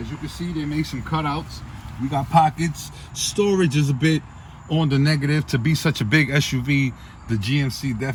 you can see, they made some cutouts. We got pockets. Storage is a bit on the negative. To be such a big SUV, the GMC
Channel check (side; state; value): both; identical; correlation 1.00